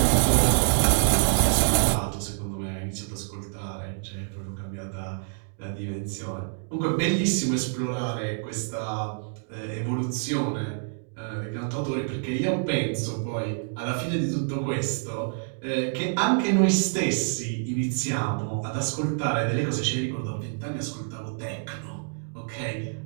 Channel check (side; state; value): left; silent; digital silence